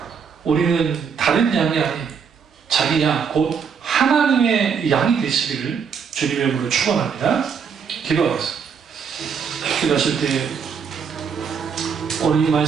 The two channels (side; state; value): left; quieter; 6.5 dB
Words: 우리는 다른 양이 아닌 자기 양, 곧 하나님의 양이 되시기를 주님의 이름으로 축원합니다. 기도하겠습니다. 기도하실 때 오늘 이